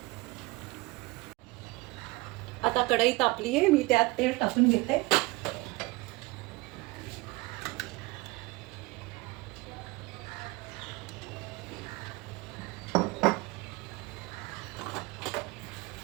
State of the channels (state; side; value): quieter; left; 22.7 dB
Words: आता कढई तापली आहे. मी त्यात तेल टाकून घेते.